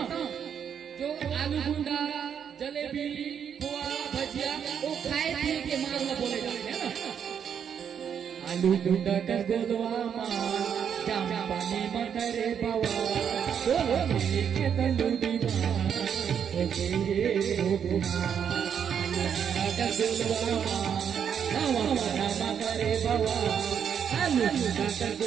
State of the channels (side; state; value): left; quieter; 8.0 dB